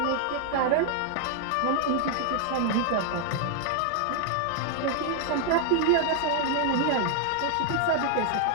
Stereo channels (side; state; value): both; different; correlation 0.00